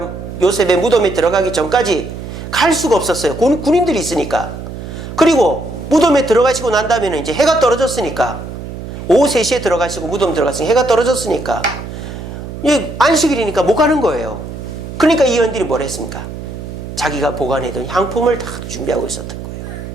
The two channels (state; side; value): noise; right; hum, 9 dB below the sound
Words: 요셉의 무덤에 들어가기 전까지 갈 수가 없었어요. 군인들이 있으니까. 그리고 무덤에 들어가시고 난 다음에는 이제 해가 떨어졌으니까, 오후 3시에 들어가시고 무덤 들어갔으니 해가 떨어졌으니까 안식일이니까 못 가는 거예요. 그러니까 이 여인들이 뭘 했습니까? 자기가 보관해둔 향품을 다 준비하고 있었던 거예요.